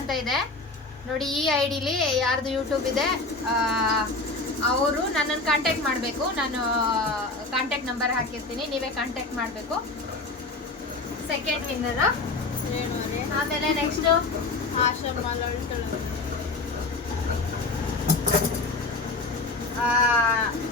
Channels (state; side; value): quieter; right; 3.4 dB